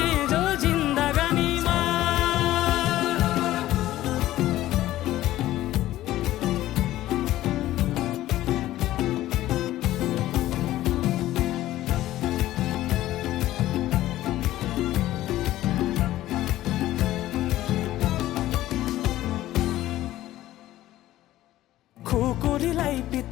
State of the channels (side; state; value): right; quieter; 14.8 dB